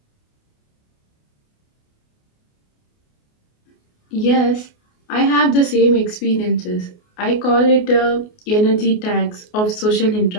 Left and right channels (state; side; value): late; right; 28 ms